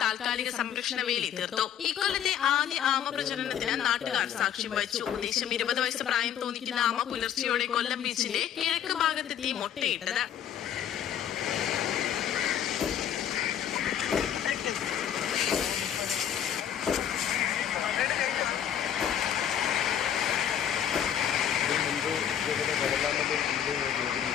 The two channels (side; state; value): right; quieter; 9.6 dB